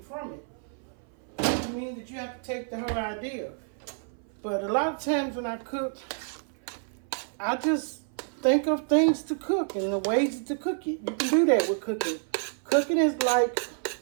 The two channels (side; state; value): left; silent; 56 dB below the other